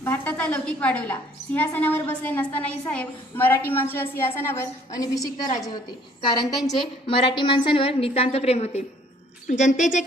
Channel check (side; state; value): both; normal; correlation 0.59